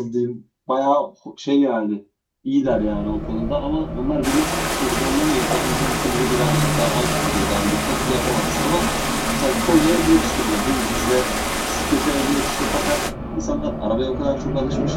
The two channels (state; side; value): identical; both; correlation 1.00